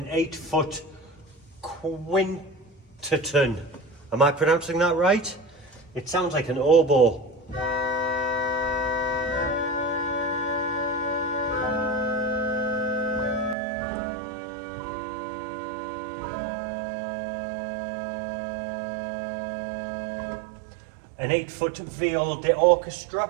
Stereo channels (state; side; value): drops out; left; at 13.6 s